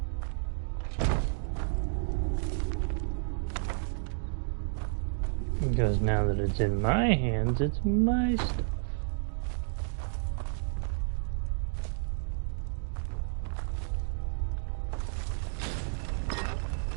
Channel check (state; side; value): silent; left; digital silence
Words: Because now that it's in my hands, it's my stuff.